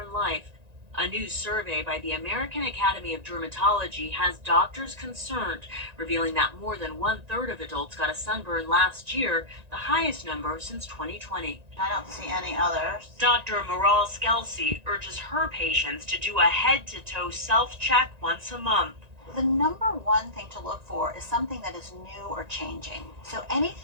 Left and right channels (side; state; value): left; late; 1.9 ms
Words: life. A new survey by the American Academy of Dermatology has doctors concerned, revealing that more than 1/3 of adults got a sunburn last year, the highest number since 2020. I don't see any others. Dr. Maral Skelsey urges her patients to do a head-to-toe self-check once a month. The number one thing to look for is something that is new or changing. So